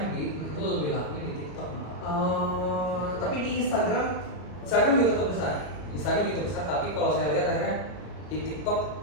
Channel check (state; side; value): late; right; 33 ms